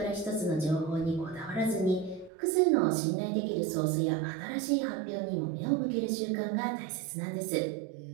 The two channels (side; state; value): left; drops out; at 2.3 s